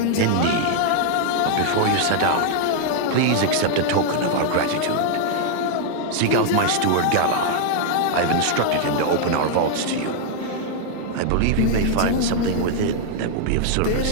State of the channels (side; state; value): both; different; correlation 0.00